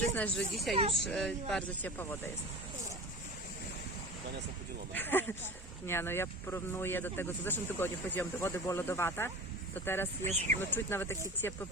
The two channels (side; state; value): both; normal; correlation 0.34